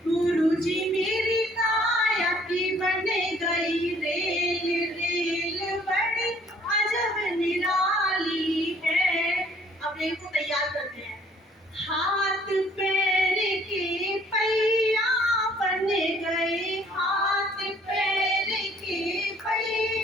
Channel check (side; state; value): both; normal; correlation 0.59